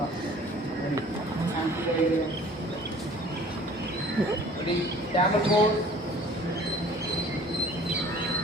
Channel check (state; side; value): normal; both; correlation 0.49